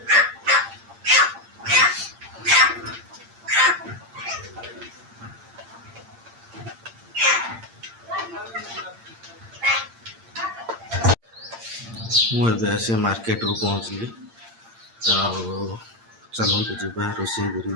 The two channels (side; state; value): left; late; 8.8 ms